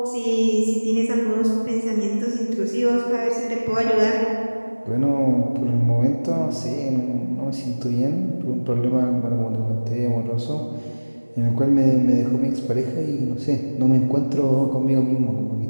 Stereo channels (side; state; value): both; inverted; correlation -1.00